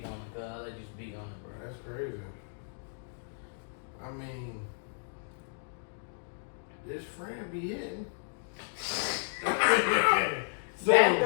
on it, cuz. I'll let you speak on it, bro. That's crazy. I mean, this friend be hitting. That's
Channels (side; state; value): right; silent; digital silence